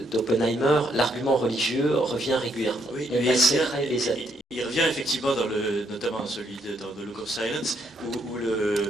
d'Oppenheimer, l'argument religieux revient régulièrement. Oui, il revient effectivement notamment dans celui dans The Look of Silence, où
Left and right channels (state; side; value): normal; both; correlation 0.73